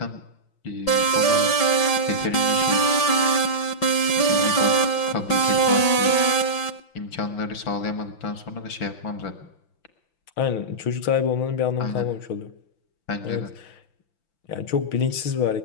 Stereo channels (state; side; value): late; right; 5.9 ms